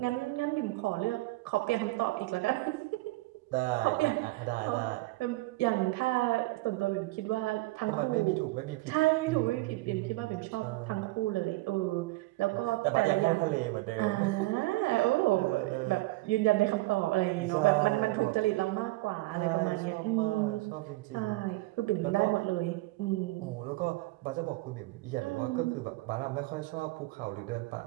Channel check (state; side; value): quieter; left; 20.5 dB